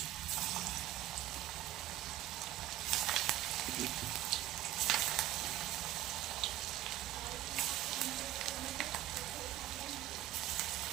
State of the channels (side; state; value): left; quieter; 14.0 dB